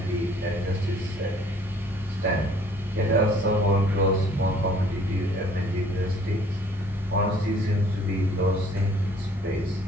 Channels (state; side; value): normal; both; correlation 0.57